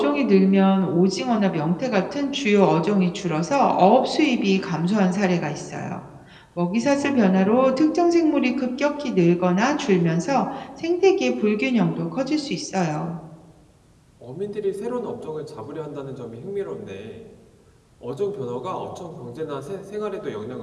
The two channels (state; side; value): identical; both; correlation 1.00